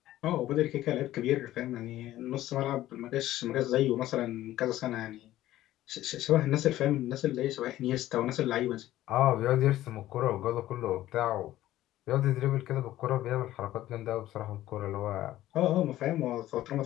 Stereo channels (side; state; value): right; quieter; 14.5 dB